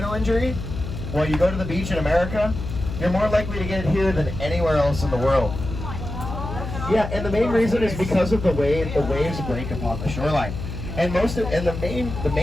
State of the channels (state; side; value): noise; left; hum, 7 dB below the sound